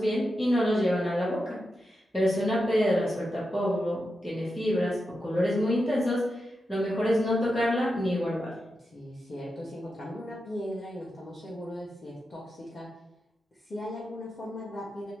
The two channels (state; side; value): normal; both; correlation 0.88